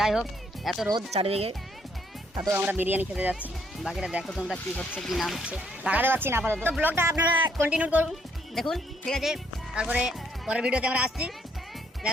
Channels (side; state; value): both; normal; correlation 0.70